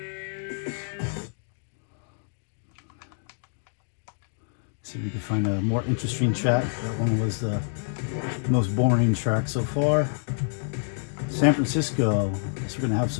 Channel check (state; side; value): silent; right; digital silence